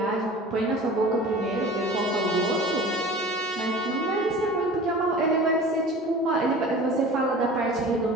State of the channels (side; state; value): both; normal; correlation 0.40